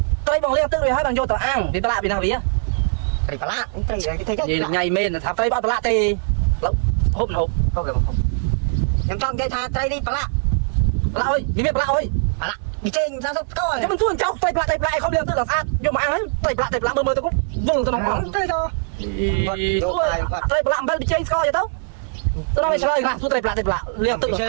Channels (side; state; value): left; silent; 65 dB below the other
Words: tây bằng liên tư rồi hả bằng vô tao ăn vì lá vì nào vậy tay lá tay gì là ngày men thả tây bao lá tê hộp hộp không em con cây tha tay đi lá ơi vì biết lá ơi lá đi trên ra giúp tôi chứ mình xuống trong tay lại không liên tư là sát vô mà ăn ấy tay lại mơ tao cũng vùng tao nóng khoảng tay cho tay lại bên đi chơi coi vậy tao tôi nói chơi nè tôi tay lại liên tư